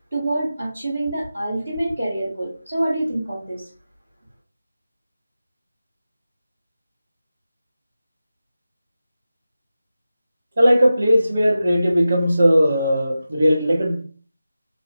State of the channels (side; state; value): both; inverted; correlation -0.93